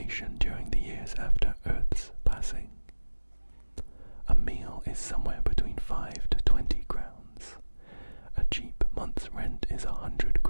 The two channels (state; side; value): inverted; both; correlation -1.00